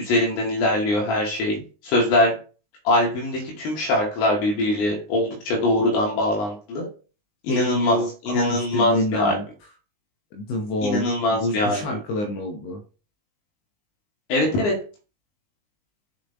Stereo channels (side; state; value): right; late; 19 ms